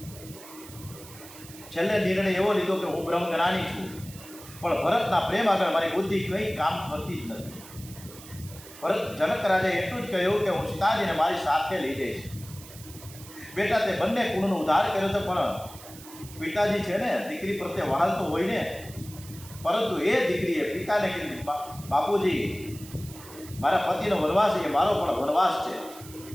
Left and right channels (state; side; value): noise; right; hiss, 17 dB below the sound